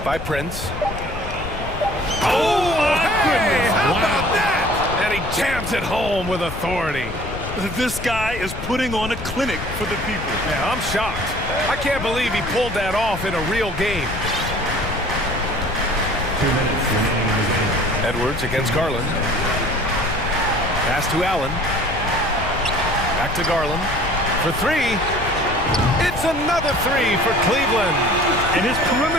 by Prince. Oh, my goodness! How about that? And he jams it home with authority. This guy is putting on a clinic for the people. Yeah, I'm shocked. I can't believe he pulled that off in a real game. 2 minutes remaining in the game. Edwards against Garland. Pass to Allen. Back to Garland. For 3. It's another 3 for Cleveland. And his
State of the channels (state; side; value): noise; left; rumble, 8 dB below the sound